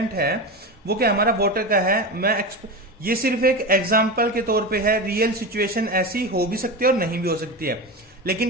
है वो क्या हमारा वाटर का है। ये सिर्फ एक एग्जाम्पल के तौर पे है, रियल सिचुएशन ऐसी हो भी सकती है और नहीं भी हो सकती है,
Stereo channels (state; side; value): normal; both; correlation 0.22